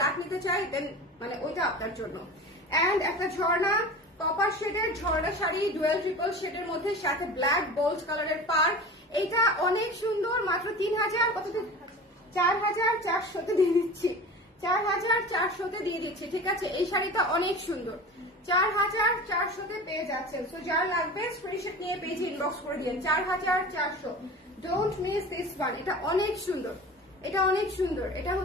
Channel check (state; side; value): normal; both; correlation 0.35